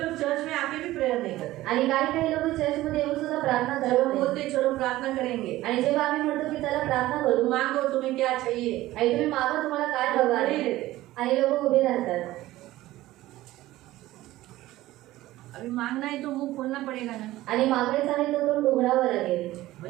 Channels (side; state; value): left; quieter; 16.4 dB